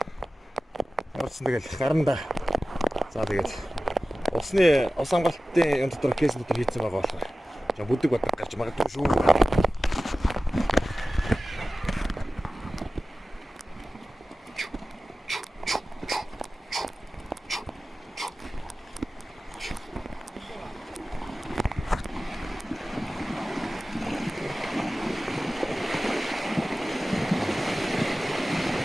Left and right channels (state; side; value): normal; both; correlation 0.95